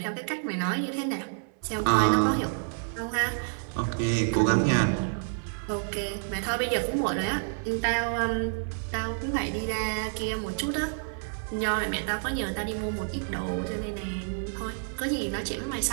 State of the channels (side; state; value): left; silent; 59 dB below the other